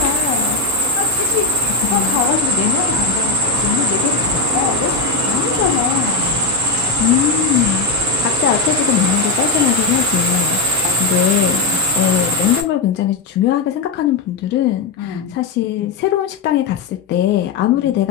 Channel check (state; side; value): quieter; right; 4.0 dB